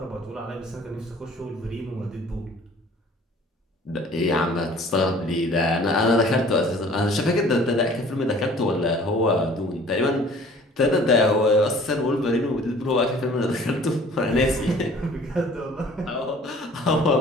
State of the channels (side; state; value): both; normal; correlation 0.51